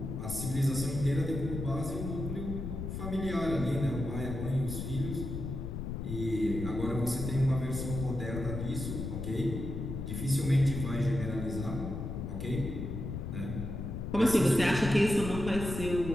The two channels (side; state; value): left; noise; rumble, 5 dB below the sound